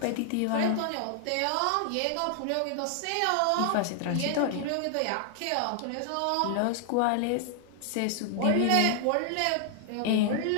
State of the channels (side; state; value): both; different; correlation 0.00